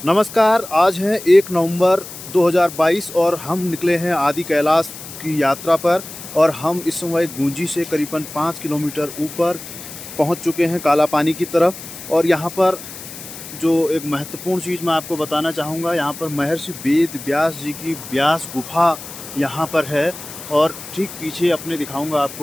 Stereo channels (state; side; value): noise; left; hiss, 13 dB below the sound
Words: नमस्कार। आज है 1 नवंबर 2022 और हम निकले हैं आदि कैलाश की यात्रा पर। और हम इस समय गूंजी से करीबन 5 किलोमीटर ऊपर पहुंच चुके हैं काला पानी की तरफ। और यहां पर जो एक महत्वपूर्ण चीज़ मैं आपको बताना चाहूँगा, यहाँ पर महर्षि वेद व्यास जी की व्यास गुफा यहाँ पर है। और ठीक पीछे अपने दिखाऊंगा